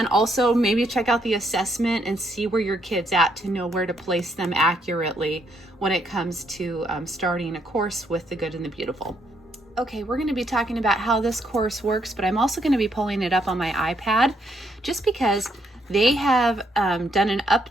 also maybe check out the assessment and see where your kid's at to know where to place them accurately when it comes to starting a course with The Good and the Beautiful. Okay, we're going to be talking about how this course works, but I'm also going to be pulling it up on my iPad just because they have done an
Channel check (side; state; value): both; normal; correlation 0.74